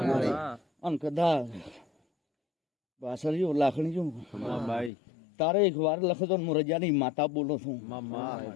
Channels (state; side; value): drops out; right; at 4.9 s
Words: અને કદાચ બાસરીઓ લાખણીઓ ભાઈ તારે એક વાર લખતો હું રજાની માતા બોલો છું